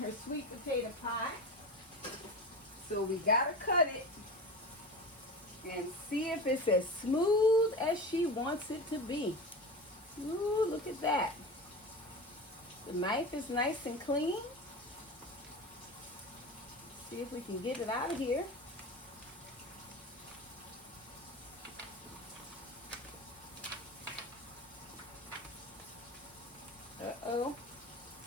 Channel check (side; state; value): both; normal; correlation 0.28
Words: sweet potato pie. So we gotta cut it and see if it's as smooth as she wants it to be. Ooh, look at that. The knife is nice and clean. See if we can get it out of here. Uh-oh.